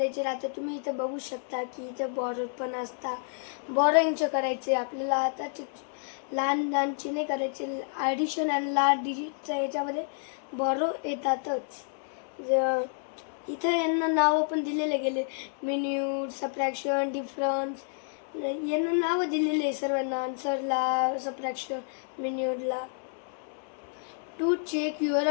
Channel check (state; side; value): silent; right; 58 dB below the other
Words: राहते. तुम्ही इथे बघू शकता की इथे बॉरो पण असता. बॉरोईंगचे करायचे आपल्याला. आता लहानचे नाही करायचे. ॲडिशन आणि लार्ज डिजिटच्या याच्यामध्ये बॉरो येतातच. इथं यांना नावं पण दिलेले गेले. मिन्यूट, सबट्रॅक्शन, डिफरन्स, यांना नावं दिलेले आहे सर्वांना. आन्सरला, सबट्रॅक्शन, मिन्यूटला. To check your